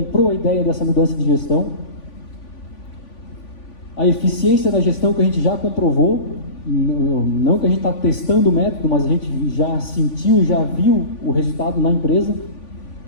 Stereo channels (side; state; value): right; late; 3.5 ms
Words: a ideia dessa mudança de gestão. A eficiência da gestão que a gente já comprovou, não que a gente está testando o método, mas a gente já sentiu, já viu o resultado na empresa.